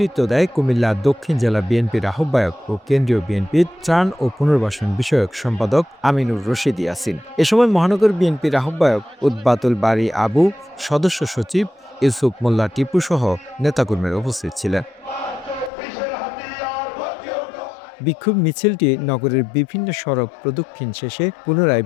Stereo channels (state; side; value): drops out; right; at 15.7 s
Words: দেয় কুমিল্লা দক্ষিণ জেলা বিএনপির আহ্বায়ক ও কেন্দ্রীয় বিএনপির ত্রাণ ও পুনর্বাসন বিষয়ক সম্পাদক আমিনুর রশিদ ইয়াসিন। এ সময় মহানগর বিএনপির আহ্বায়ক উদ্বাতুল বারী আবু, সদস্য সচিব ইউসুফ মোল্লা টিপু সহ নেতাকর্মীরা উপস্থিত ছিলেন। বিক্ষোভ মিছিলটি নগরের বিভিন্ন সড়ক প্রদক্ষিণ শেষে পুনরায়